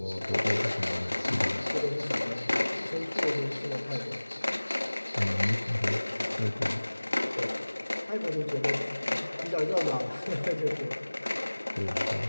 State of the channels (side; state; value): both; inverted; correlation -1.00